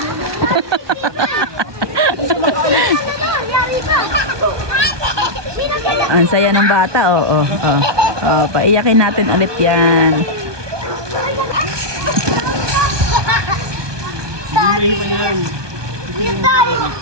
Ang saya ng bata, oo. Paiyakin natin ulit yan.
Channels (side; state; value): left; late; 1.2 ms